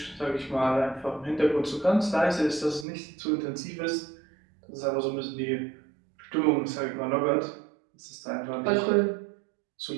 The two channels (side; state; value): left; drops out; at 2.9 s